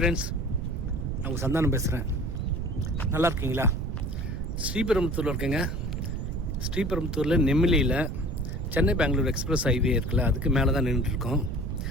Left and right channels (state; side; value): noise; right; rumble, 3 dB below the sound